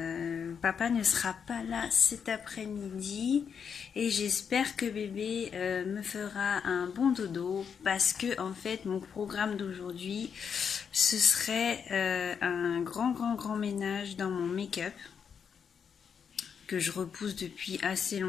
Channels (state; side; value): quieter; right; 6.9 dB